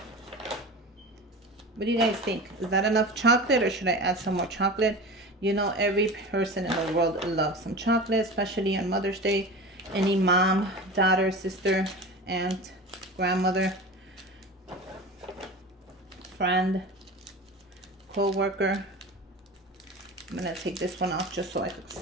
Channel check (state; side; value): normal; both; correlation 0.32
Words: What do you guys think? Is that enough chocolate, or should I add some more chocolate? You know, every person in the world loves some chocolate, especially on Mother's Day. Any mom, daughter, sister, aunt, grandmother, friend, co-worker. I'm gonna take this one off just so I could